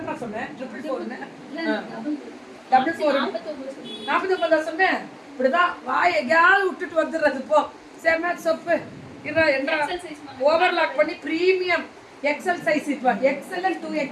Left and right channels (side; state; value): both; identical; correlation 1.00